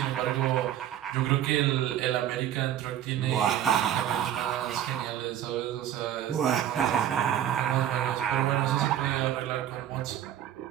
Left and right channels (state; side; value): quieter; left; 11.0 dB